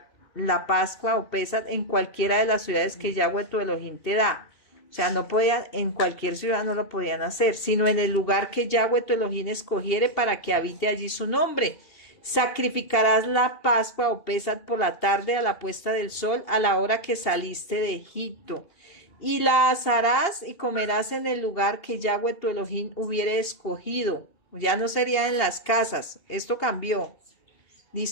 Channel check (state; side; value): late; right; 2.8 ms